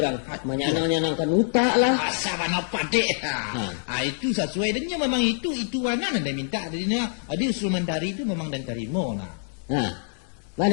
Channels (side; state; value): right; silent; 61 dB below the other